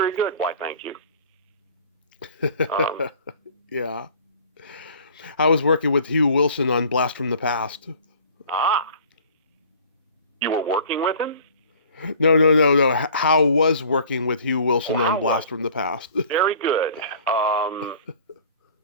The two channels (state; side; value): inverted; both; correlation -0.48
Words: good." Why, thank you. Yeah. I was working with Hugh Wilson on Blast from the Past. You were working with him? No. How was working with Hugh Wilson on Blast from the Past? Very good.